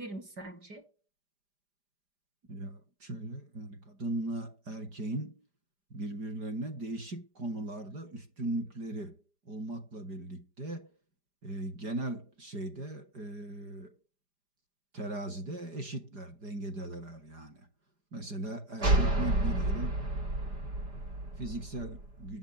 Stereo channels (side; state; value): left; late; 5.0 ms